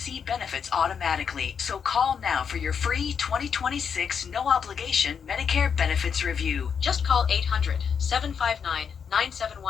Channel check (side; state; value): right; quieter; 6.9 dB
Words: benefits automatically, so call now for your free 2026 no-obligation Medicare benefits review. Just call 800-759-9714.